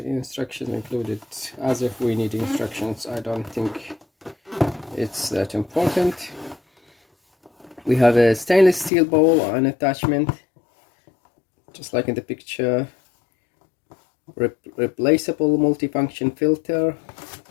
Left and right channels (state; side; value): drops out; right; at 8.9 s